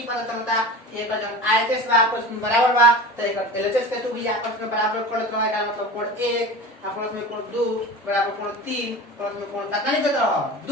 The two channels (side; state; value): both; normal; correlation 0.33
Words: पता चलता कि एक जब आयतस बा आपस में बराबर बा तो एक एलएचएस के 2 भी आपस में बराबर कर देना का मतलब कोण 1 प्लस में कोण 2 बराबर कोण 3 प्लस में कोण कितना लिख देता